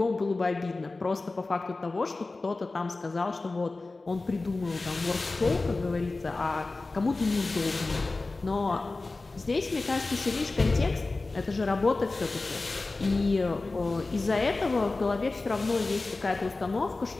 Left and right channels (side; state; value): right; quieter; 3.4 dB